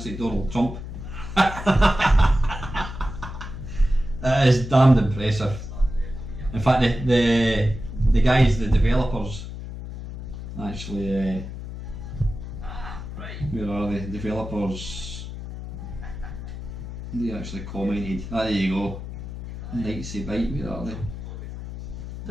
like Donald Trump. That is damned impressive. In fact, the guys, the developers, actually, where are they? Developers, they actually commented. There you go. Nightsy Bite, where are they?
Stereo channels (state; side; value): noise; left; hum, 9 dB below the sound